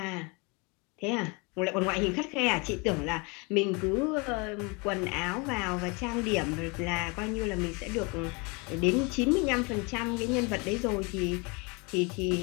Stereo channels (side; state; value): right; quieter; 29.6 dB